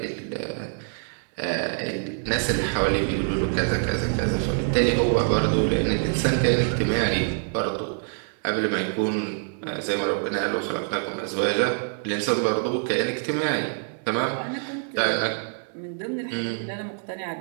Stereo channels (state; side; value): silent; left; digital silence